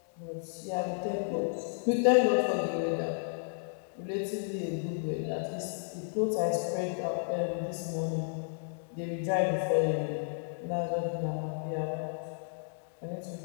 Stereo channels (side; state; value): right; silent; digital silence